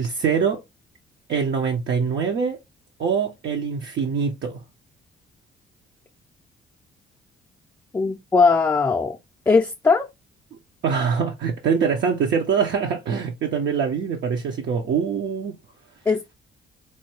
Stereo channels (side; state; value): both; normal; correlation 0.42